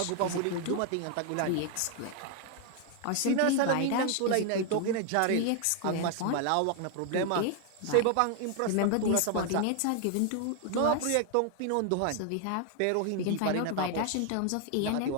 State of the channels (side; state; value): both; different; correlation 0.00